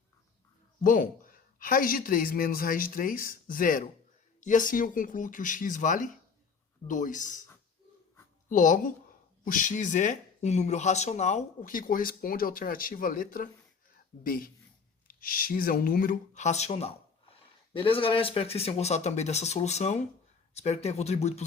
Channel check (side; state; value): right; quieter; 5.4 dB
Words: Bom, raiz de 3 menos raiz de 3, 0. E assim eu concluo que o x vale 2. Logo, o x é um número racional, o que corresponde à alternativa letra B. X é um número racional. Beleza, galera? Espero que vocês tenham gostado também dessa solução. Espero que tenha contribuído para